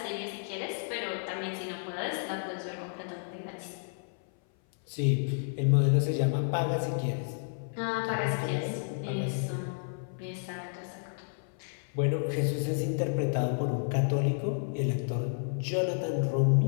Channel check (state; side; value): silent; right; 56 dB below the other